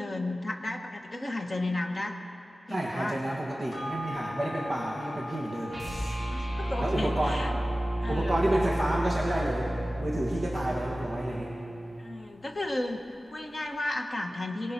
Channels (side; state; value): both; normal; correlation 0.96